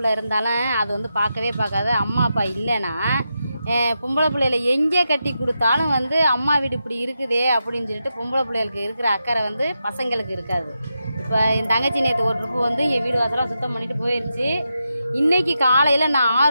இருந்தாலும் அது வந்து பார்க்காது. அம்மா அப்பா இல்லைன்னா பொம்பளை பிள்ளைகளை எங்கே கட்டி கொடுத்தாலும் வந்து அம்மா வீடு இப்படி இருக்குதே அப்படின்னு சொல்லிட்டு பொம்பளை பிள்ளைகளுக்கு இருக்கிற அக்கறை வந்து பசங்களுக்கு இருக்காது. இப்போ என் தங்கச்சி நேற்று ஒரு ட்ரிப்பு வந்து என் வீடு வாசலாம் சுத்தம் பண்ணிட்டு போயிடுச்சு. இன்றைக்கி காலையில் நான்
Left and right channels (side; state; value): both; inverted; correlation -0.87